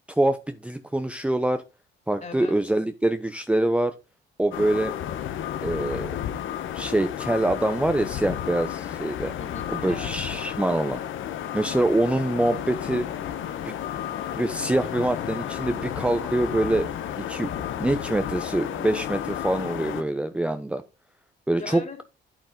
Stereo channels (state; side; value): normal; both; correlation 0.81